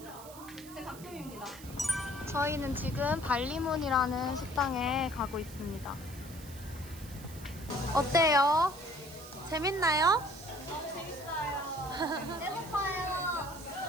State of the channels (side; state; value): right; noise; hiss, 17 dB below the sound